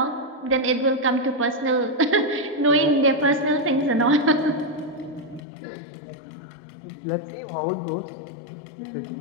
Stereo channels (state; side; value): drops out; right; at 5.4 s